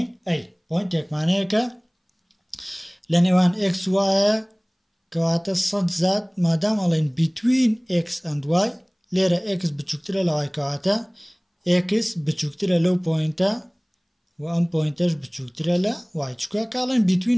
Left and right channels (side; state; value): both; identical; correlation 1.00